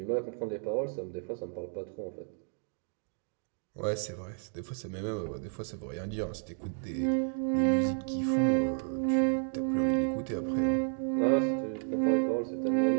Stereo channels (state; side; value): silent; left; 57 dB below the other